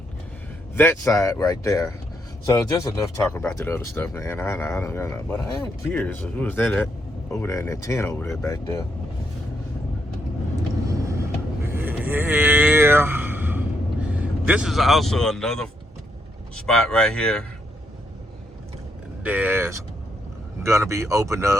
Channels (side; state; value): both; normal; correlation 0.77